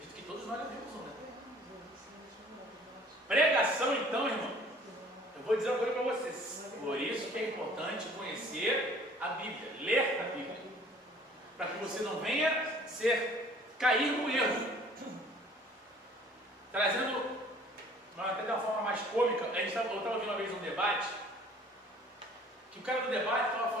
que todos nós levamos um, né? Pregação, então, irmão, eu vou dizer uma coisa para vocês. Por isso que é importante conhecer a Bíblia, ler a Bíblia, para que você não venha cair no erro. Trazendo, até de uma forma mais cômica, eu estava ouvindo uma vez um debate, que o cara do debate estava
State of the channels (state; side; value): normal; both; correlation 0.53